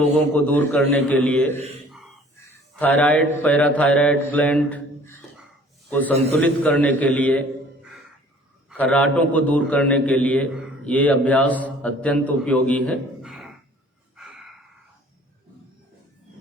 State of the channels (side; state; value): both; normal; correlation 0.52